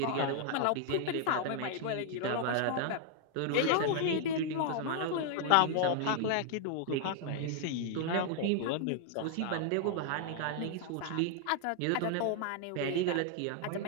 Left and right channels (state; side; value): different; both; correlation 0.00